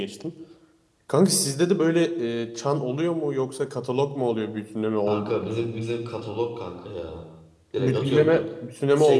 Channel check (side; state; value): both; identical; correlation 1.00